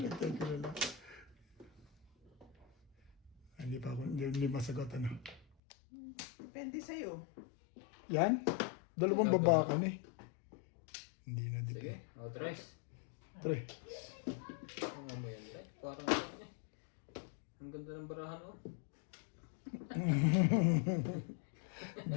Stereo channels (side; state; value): right; drops out; at 5.5 s